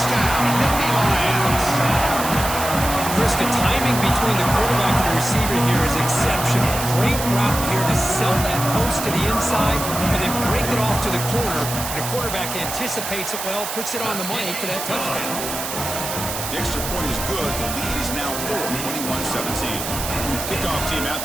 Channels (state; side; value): noise; right; hiss, 5 dB below the sound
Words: Nittany Lions. Chris, the timing between the quarterback and the receiver here is exceptional. Great route here to sell that post to the inside and then break it off to the corner. And the quarterback anticipates it well, puts it on the money for that touchdown. The extra point is good. The lead is now 21-17. Kickoff team out